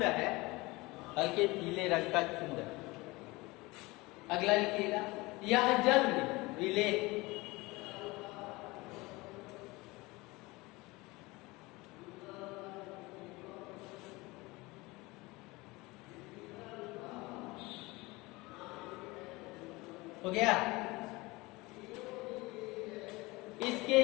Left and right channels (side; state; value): right; quieter; 22.6 dB